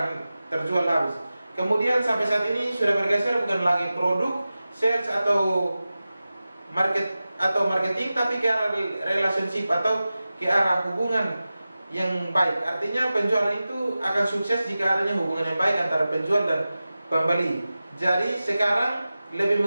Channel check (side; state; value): both; inverted; correlation -0.95